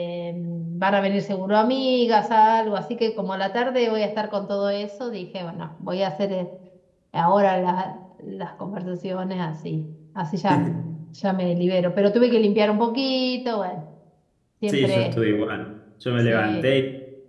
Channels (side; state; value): both; identical; correlation 1.00